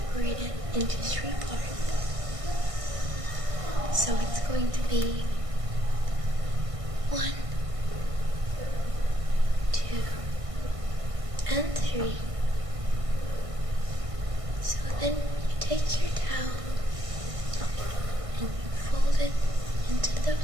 it into 3 parts. So it's going to be 1, 2, and 3. So then you take your towel and you fold it into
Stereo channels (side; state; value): left; late; 1.6 ms